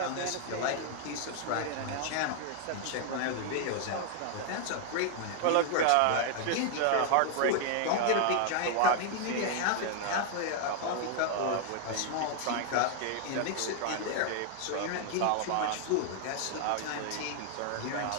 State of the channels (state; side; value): different; both; correlation 0.00